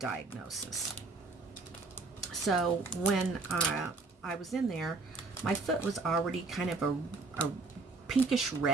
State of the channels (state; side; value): quieter; left; 3.8 dB